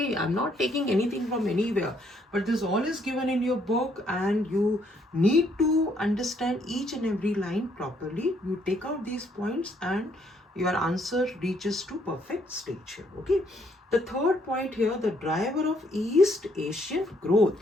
I'm not taking anything from anywhere, but this all is given in your book, and you need to understand each and every line properly. You take out these points and your answer reaches to perfect stage here. Okay, the third point here, the driver of East Asian growth.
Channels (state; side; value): normal; both; correlation 0.69